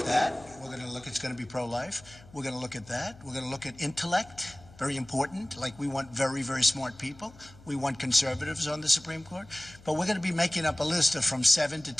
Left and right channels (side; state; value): left; noise; hum, 22 dB below the sound